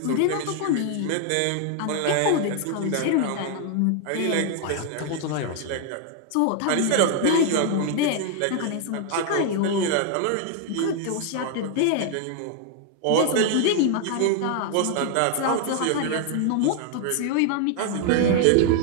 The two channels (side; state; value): both; different; correlation 0.00